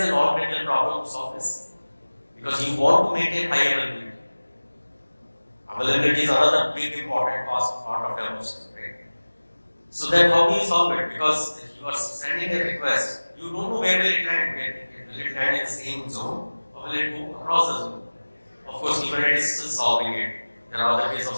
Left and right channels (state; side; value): inverted; both; correlation -1.00